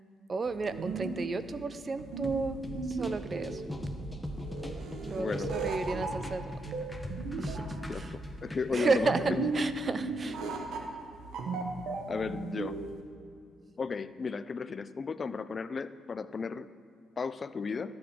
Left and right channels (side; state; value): both; normal; correlation 0.79